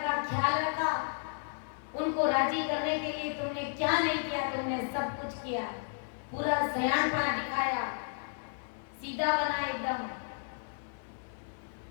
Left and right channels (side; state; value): right; silent; 56 dB below the other